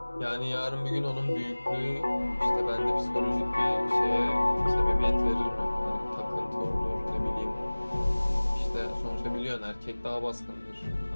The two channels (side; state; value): both; inverted; correlation -1.00